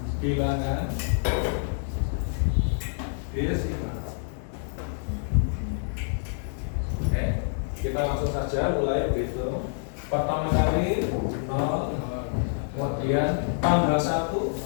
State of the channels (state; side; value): silent; right; digital silence